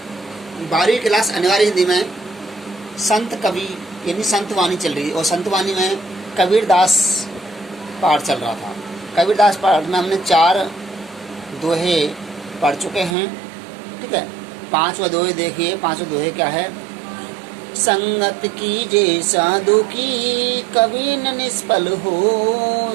12वीं क्लास अनिवार्य हिंदी में संत कवि यानी संत वाणी चल रही है और संत वाणी में कबीरदास पाठ चल रहा था। कबीरदास पाठ में हमने 4 दोहे पढ़ चुके हैं, ठीक है। 5वां दोहे देखिए, 5वां दोहे क्या है। संगत कीजे साधु की कभी न निष्फल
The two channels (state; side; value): drops out; left; at 13.2 s